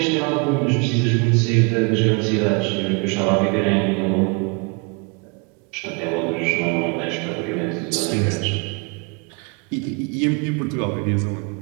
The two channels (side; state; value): left; quieter; 31.7 dB